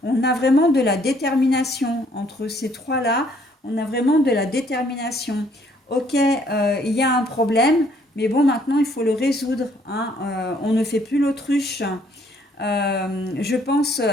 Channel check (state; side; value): normal; both; correlation 0.64